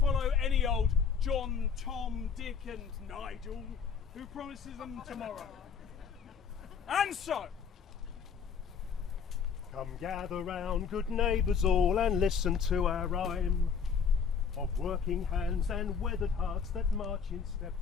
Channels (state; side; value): quieter; right; 6.5 dB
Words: follow any old John, Tom, Dick and Nigel who promises them tomorrow. And so, come gather round, good neighbours all, and listen to our rhyme of working hands and weathered hearts that march in step